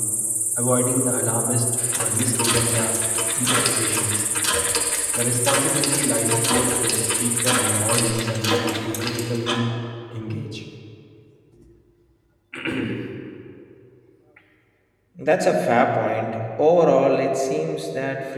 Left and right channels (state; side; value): identical; both; correlation 1.00